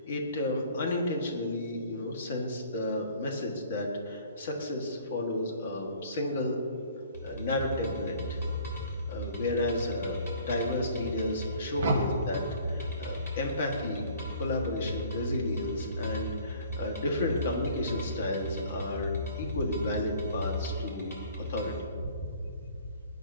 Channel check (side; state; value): both; inverted; correlation -0.53